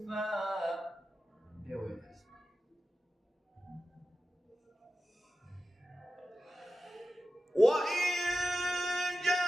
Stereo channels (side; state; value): both; normal; correlation 0.93